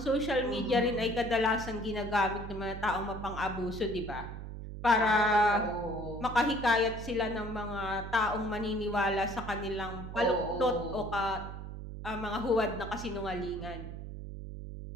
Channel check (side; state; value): right; noise; hum, 9 dB below the sound